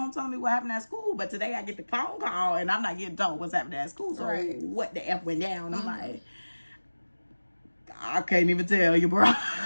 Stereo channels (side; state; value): both; inverted; correlation -1.00